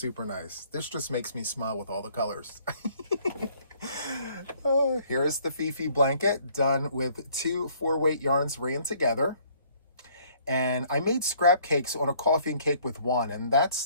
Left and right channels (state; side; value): inverted; both; correlation -0.61